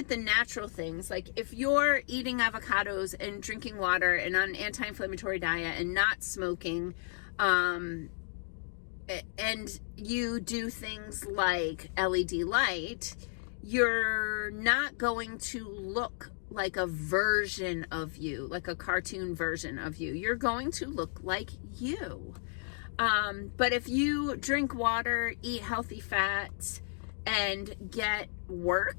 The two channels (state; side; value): silent; right; 56 dB below the other